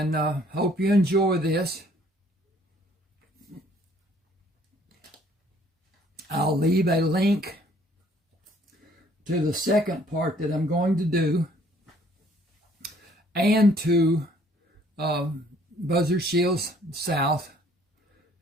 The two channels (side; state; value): both; normal; correlation 0.60